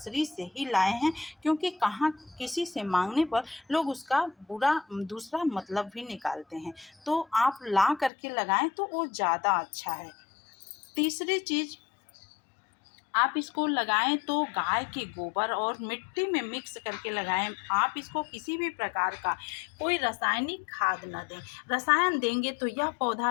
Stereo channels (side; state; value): right; drops out; at 8.1 s